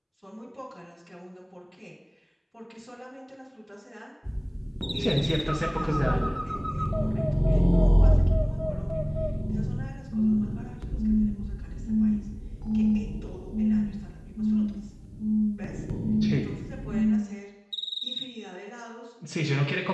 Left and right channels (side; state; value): both; identical; correlation 1.00